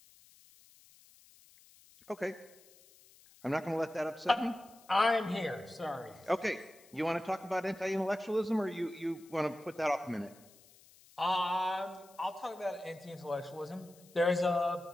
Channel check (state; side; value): noise; left; hiss, 25 dB below the sound